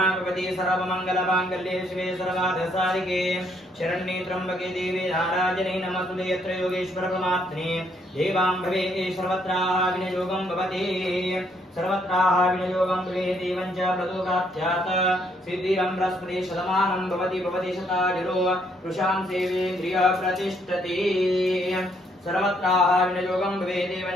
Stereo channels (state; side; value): normal; both; correlation 0.70